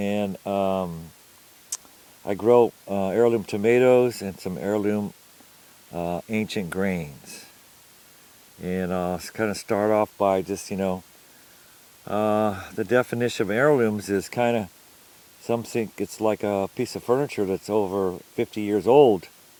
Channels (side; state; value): both; identical; correlation 1.00